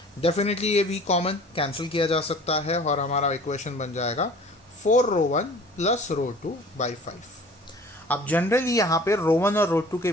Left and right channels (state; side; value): normal; both; correlation 0.46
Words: Definitely ये v कॉमन कैंसिल किया जा सकता है और हमारा इक्वेशन बन जाएगा 4 रो 1 प्लस रो 2 बाई 5. अब जनरली यहाँ पे रो 1 और रो 2 के